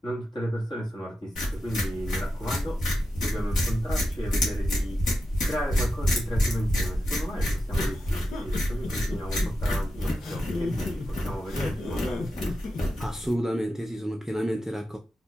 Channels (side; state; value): both; normal; correlation 0.89